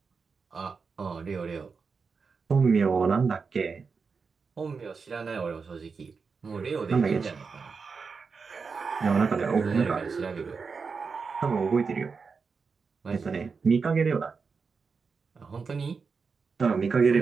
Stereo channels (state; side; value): quieter; left; 5.1 dB